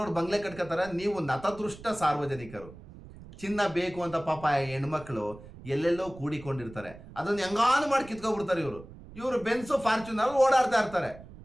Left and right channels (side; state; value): right; noise; rumble, 17 dB below the sound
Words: ಬಂಗ್ಲೆ ಕಟ್ಕೋತಾರೆ. ನೀವು ನತದೃಷ್ಟ ಸಾರ್ವಜನಿಕರು, ಚಿನ್ನ ಬೇಕು ಅಂತ ಪಾಪ ಹೆಣ್ಮಕ್ಳು ಎಲ್ಲೆಲ್ಲೋ ಕೂಡಿಕೊಂಡಿರ್ತಾರೆ, ಅದನ್ನು ಹೆಂಗಾನು ಮಾಡಿ ಕಿತ್ಕೊಬಿಡ್ತಾರೆ ಇವರು ಬೆನ್ಸು ಫಾರ್ಚುನರ್ ಓಡಾಡ್ತಾ ಇರ್ತಾರೆ.